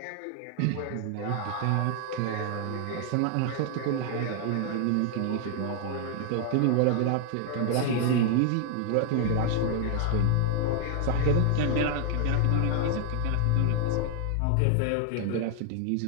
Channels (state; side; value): different; both; correlation 0.00